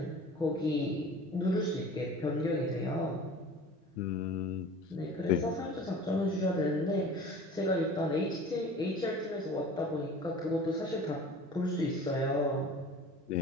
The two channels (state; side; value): normal; both; correlation 0.42